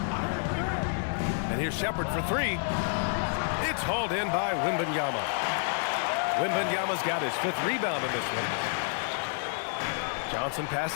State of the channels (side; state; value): right; silent; digital silence